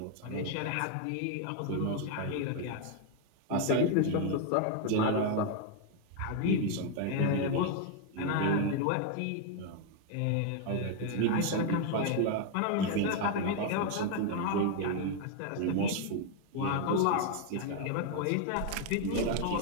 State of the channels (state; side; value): different; both; correlation 0.01